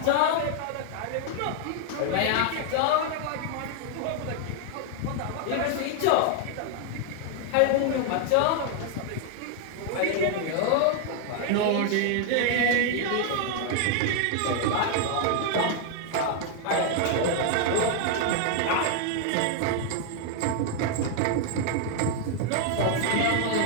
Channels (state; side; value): different; both; correlation 0.00